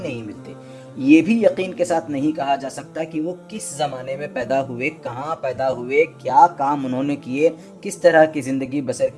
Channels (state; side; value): identical; both; correlation 1.00